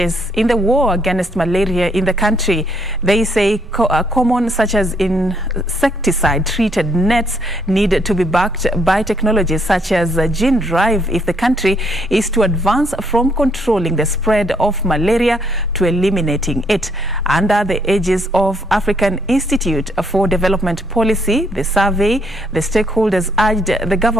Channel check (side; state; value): both; normal; correlation 0.71